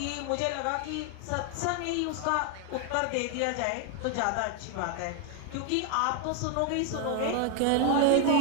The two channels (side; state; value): both; different; correlation 0.01